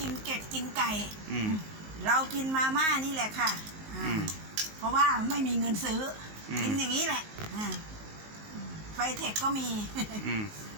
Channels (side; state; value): left; late; 19 ms